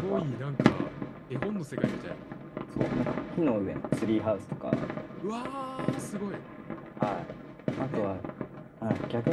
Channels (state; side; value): identical; both; correlation 1.00